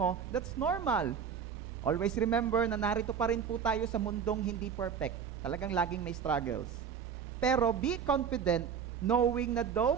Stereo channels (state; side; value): quieter; left; 7.3 dB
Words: that's normal. Always remember na narito pa rin po tayo sa mundong hindi perfect. Talagang laging may struggles. Pero be confident knowing na though